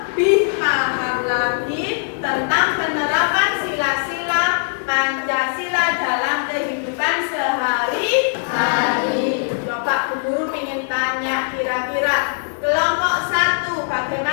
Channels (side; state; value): right; silent; digital silence